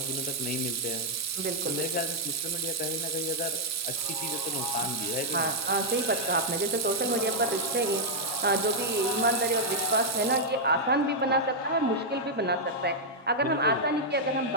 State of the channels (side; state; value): both; normal; correlation -0.04